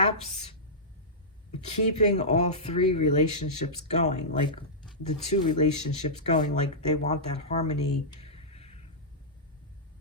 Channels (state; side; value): normal; both; correlation -0.14